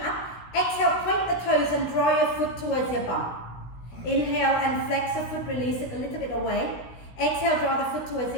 up. Exhale, point the toes and draw your foot towards your bum. Inhale and flex the foot, release it a little bit away. Exhale, draw the foot towards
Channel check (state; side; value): late; right; 16 ms